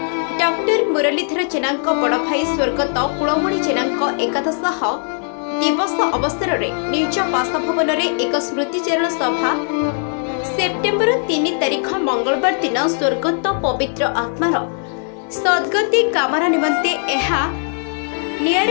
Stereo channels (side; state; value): right; silent; 57 dB below the other